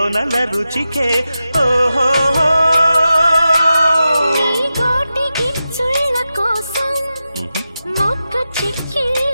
రుచికే ఓహో. నీ గోటి గిచ్చుళ్ళ కోసం మొక్క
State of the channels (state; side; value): inverted; both; correlation -0.91